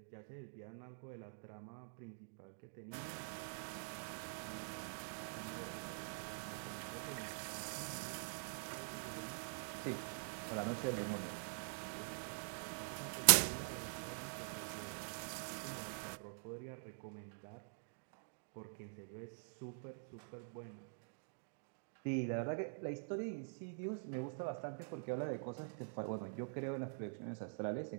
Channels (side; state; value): left; silent; digital silence